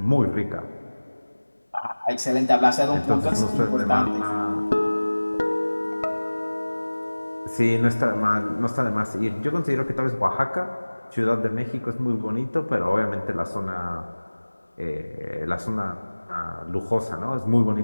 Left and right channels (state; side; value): inverted; both; correlation -1.00